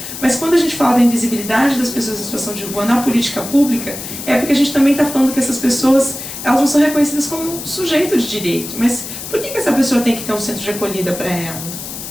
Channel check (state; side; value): noise; left; hiss, 9 dB below the sound